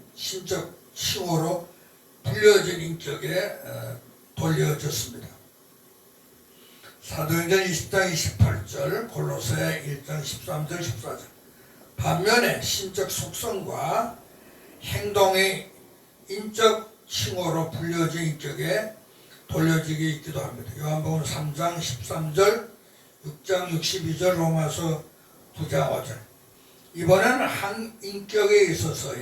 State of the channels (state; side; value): identical; both; correlation 1.00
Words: 신적 칭호로 불려진 인격에 돌려졌습니다. 사도행전 20장 28절 골로새 1장 13절 14절 반면에 신적 속성과 행동의 인적 칭호로 불려진 인격에 돌려지게 있기도 합니다. 요한복음 3장 13절 6장 62절 로마서 9장 5절 이번에는 한 인격에